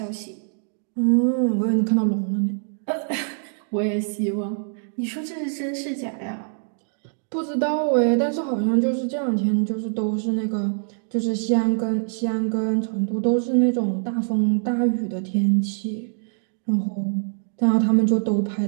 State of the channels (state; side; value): silent; left; digital silence